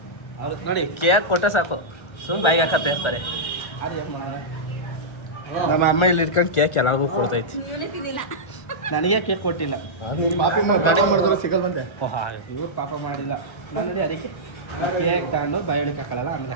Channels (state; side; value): late; right; 1.3 ms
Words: ಅವ್ರು ನೋಡಿ ಕೇಕ್ ಕೊಟ್ಟರೆ ಸಾಕು ಬಾಯಿಗೆ ಹಾಕತ್ತೆ ಇರ್ತಾರೆ. ಅದು ಏನು ಮಾಡೋಣ. ನಮ್ಮ ಅಮ್ಮ ಇಲ್ಲಿ ಇಟ್ಕೊಂಡು ಕೇಕ್ ಎಲ್ಲರಿಗೂ ಕೊಡ್ತೈತಿ. ನನಗೆ ಕೇಕ್ ಕೊಟ್ಟಿಲ್ಲ. ಪಾಪಿ ಮಾಡಿದ್ರೆ ಸಿಗಲ್ ಬಂದೆ. ಓಹಾ ಇವ್ರು ಪಾಪ ಮಾಡಿಲ್ಲ. ನಾನು ನೋಡಿ ಅದಕ್ಕೆ ಕೇಕ್ ತಗೊಂಡು ಬಾಯಿಗೆ ಹಾಕಲ್ಲ. ಆಮೇಲೆ